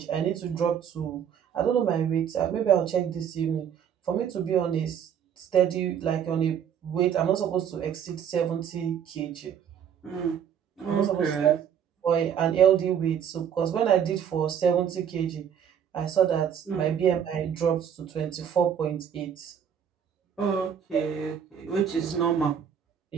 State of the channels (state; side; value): quieter; left; 8.4 dB